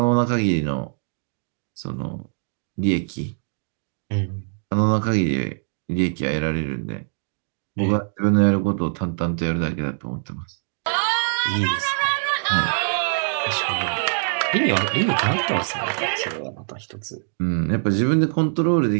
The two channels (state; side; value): silent; left; digital silence